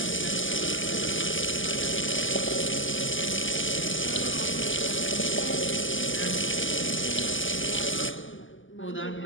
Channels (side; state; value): right; late; 0.57 ms